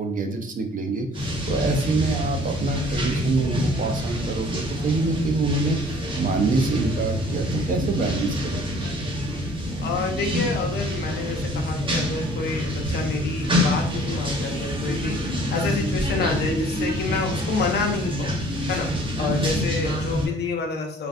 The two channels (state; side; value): normal; both; correlation 0.53